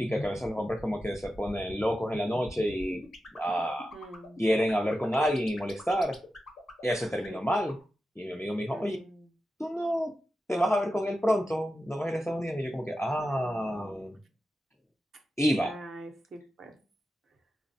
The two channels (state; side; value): normal; both; correlation 0.91